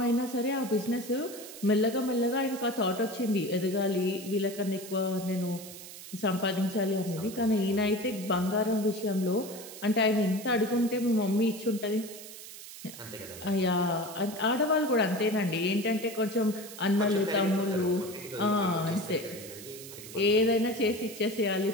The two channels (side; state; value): right; noise; hiss, 14 dB below the sound